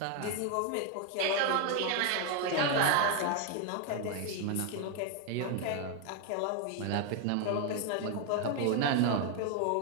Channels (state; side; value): different; both; correlation 0.01